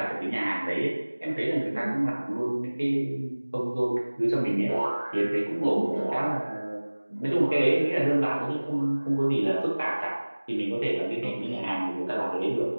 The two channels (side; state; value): both; inverted; correlation -1.00